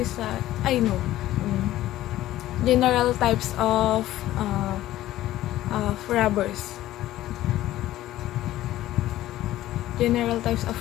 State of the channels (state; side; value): quieter; right; 14.6 dB